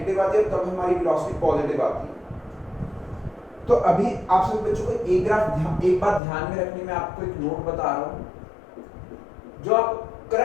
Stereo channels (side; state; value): right; drops out; at 6.2 s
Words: आती है और कब हमारी वेलोसिटी पॉजिटिव आती है। तो अभी आप सभी बच्चों को एक बात ध्यान में रखनी, मैं आपको एक नोट बता रहा हूं, जो आप